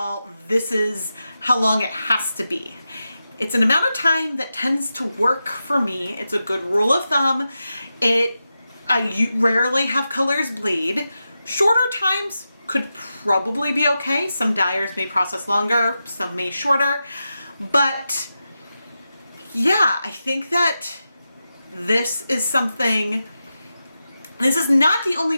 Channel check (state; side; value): inverted; both; correlation -0.91